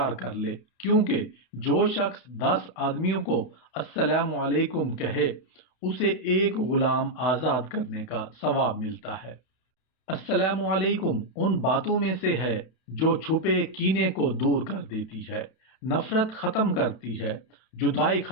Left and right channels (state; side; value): late; right; 32 ms